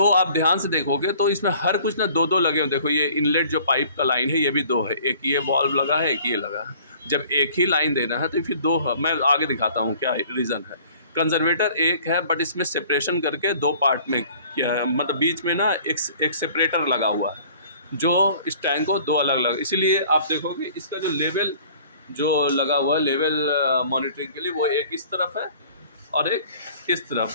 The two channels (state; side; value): inverted; both; correlation -0.52